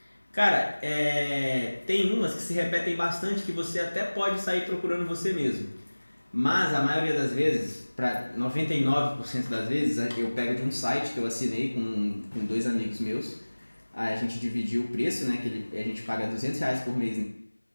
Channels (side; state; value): both; inverted; correlation -1.00